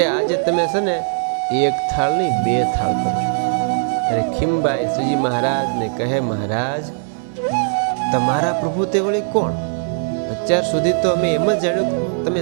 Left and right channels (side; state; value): left; silent; 59 dB below the other